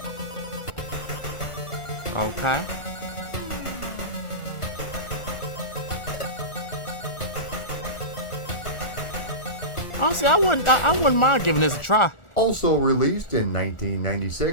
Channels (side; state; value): right; late; 1.4 ms